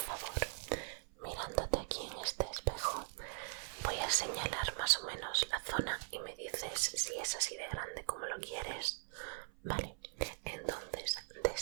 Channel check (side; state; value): left; silent; 51 dB below the other